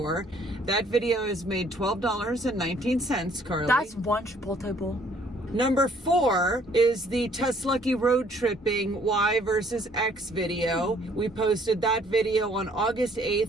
That video has made $12.19, Carly. That's one Chipotle. Number 4 is the TesLUCKY road tripping Y versus X video. We posted that video on August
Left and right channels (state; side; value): normal; both; correlation 0.61